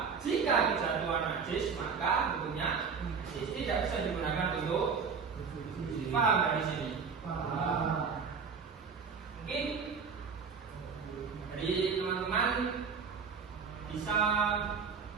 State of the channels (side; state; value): left; quieter; 5.8 dB